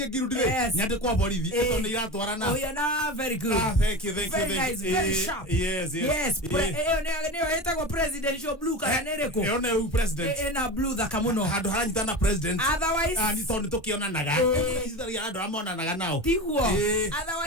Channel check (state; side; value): normal; both; correlation 0.27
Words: girudi ri. Nyande kwa borithi. Eto ni iratwarana. Ohiana very good. Thank you. Very nice, very sharp. Yes. Eo etagwo presidential blue kana nereko. Eo ne president. Ena blue thaka muno. Handu haranyitana president. Otherwise ni tondu tukionanaga. Ithari andu amonanaga nao. Tiguo.